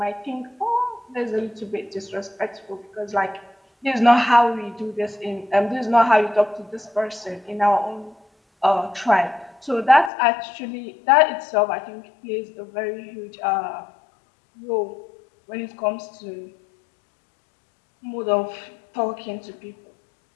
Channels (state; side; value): drops out; right; at 10.1 s